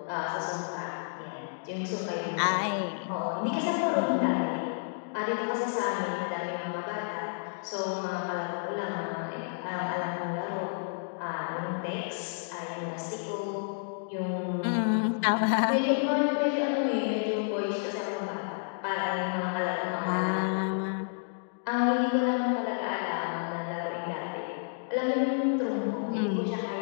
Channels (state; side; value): silent; right; digital silence